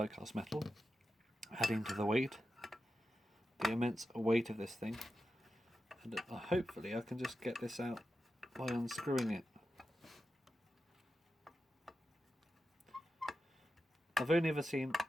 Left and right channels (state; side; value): normal; both; correlation 0.90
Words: metal, adding to the weight, the immense weight of this thing. And hopefully I can just get this out by unscrewing it. I've only ever seen